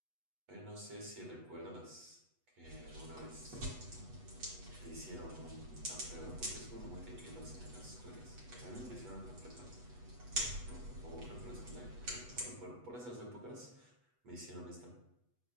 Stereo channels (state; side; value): late; left; 8.2 ms